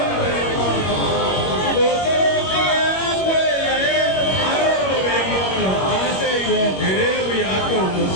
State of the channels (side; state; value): right; late; 21 ms